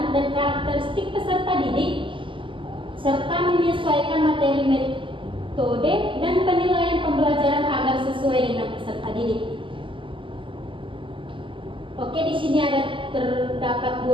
dan karakteristik peserta didik serta menyesuaikan materi, metode, dan penilaian pembelajaran agar sesuai dengan peserta didik. Oke, di sini terdapat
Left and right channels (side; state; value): left; late; 0.25 ms